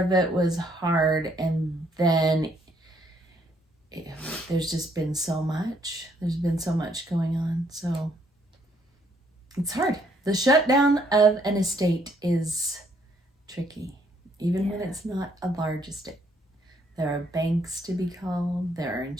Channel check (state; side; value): normal; both; correlation 0.68